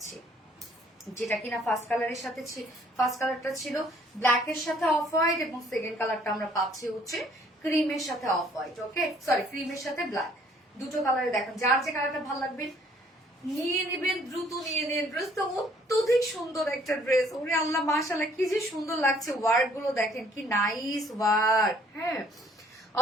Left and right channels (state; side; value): normal; both; correlation 0.61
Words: যেটা কিনা ফার্স্ট কালারের সাথে ফার্স্ট কালারটা ছিল ব্ল্যাকের সাথে অফ হোয়াইট, এবং সেকেন্ড কালারটা আমরা পাচ্ছি হচ্ছে ক্রিমের সাথে অফ হোয়াইট। ওকে সরি, ক্রিমের সাথে ব্ল্যাক, দুটো কালারে দেখেন। যার যে কালারটা ভালো লাগবে নিয়ে নেবেন, দ্রুত নিয়ে নেন। ড্রেসটা অত্যধিক সুন্দর একটা ড্রেস। ওরে আল্লাহ মাশাআল্লাহ, কি যে সুন্দর লাগছে। ওয়ার্ক গুলো দেখেন কি নাইস ওয়ার্ক। হ্যাঁ,